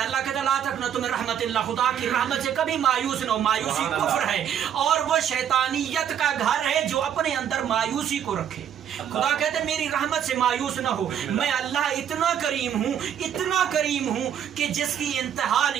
है, अल्लाह कहता है ला तक़नतु मिन रहमतिल्लाह, खुदा की रहमत से कभी मायूस न हो। मायूसी कुफ्र है और वो शैतानियत का घर है जो अपने अंदर मायूसी को रखे। खुदा कहते हैं मेरी रहमत से मायूस ना हो। मैं अल्लाह इतना करीम हूँ कि जिसकी इंतहा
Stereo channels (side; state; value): left; quieter; 9.2 dB